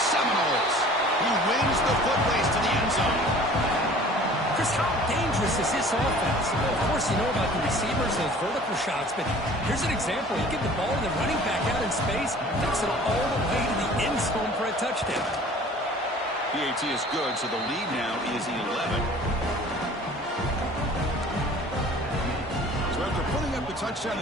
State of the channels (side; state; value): both; normal; correlation 0.47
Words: Seminoles. He wins the foot race to the end zone. Chris, how dangerous is this offense? Well, of course, you know about the receivers, those vertical shots, but here's an example. You get the ball to the running back out in space, takes it all the way to the end zone for a touchdown. PAT is good, so the lead now is 11. So after putting up the touchdown,